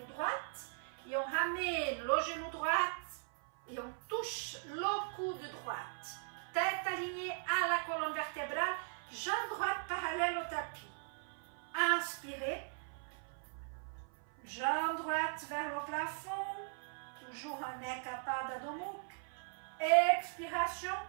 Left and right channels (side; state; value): left; silent; 52 dB below the other